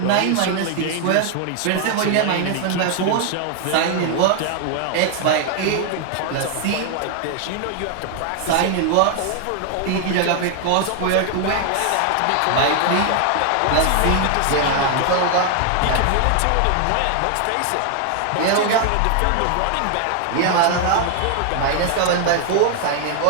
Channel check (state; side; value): different; both; correlation 0.00